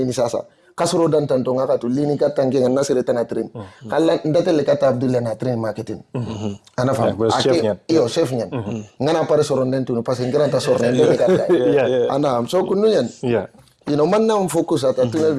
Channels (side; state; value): both; identical; correlation 1.00